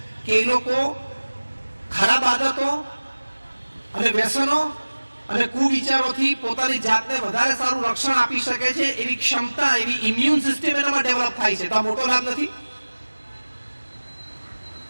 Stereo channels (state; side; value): inverted; both; correlation -1.00